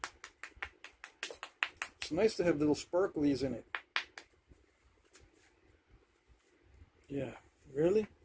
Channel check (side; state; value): both; identical; correlation 1.00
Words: It's nice to have little sparklies in it. Yeah. Really?